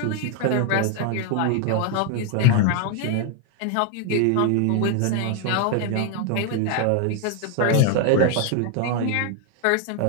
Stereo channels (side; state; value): both; different; correlation 0.01